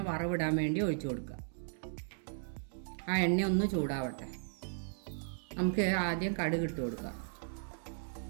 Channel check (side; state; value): left; silent; digital silence